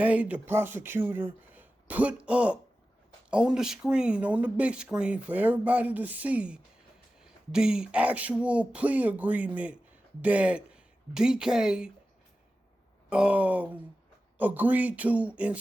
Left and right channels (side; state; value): both; normal; correlation 0.94